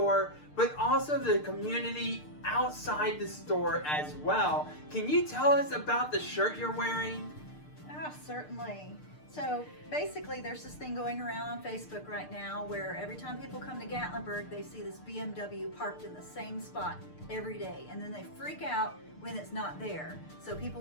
but also the community outside the store as well. Can you tell us about the shirt you're wearing? Certainly. So basically there's this thing going around on Facebook right now where every time people come to Gatlinburg, they see this BMW parked in the same spot every day, and then they freak out when it's not there. So people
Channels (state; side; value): late; right; 6.6 ms